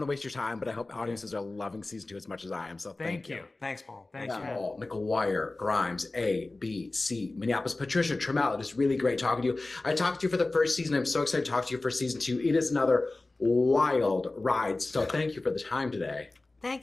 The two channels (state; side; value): quieter; right; 3.1 dB